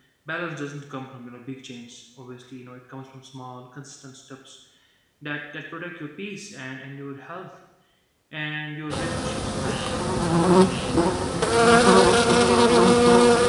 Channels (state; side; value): identical; both; correlation 1.00